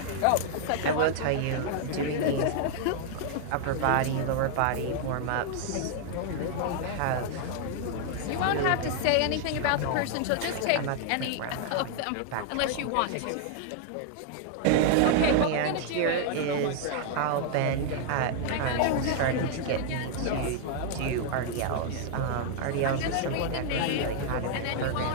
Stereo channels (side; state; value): both; different; correlation 0.00